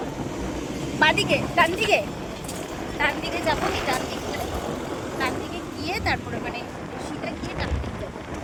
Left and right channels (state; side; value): identical; both; correlation 1.00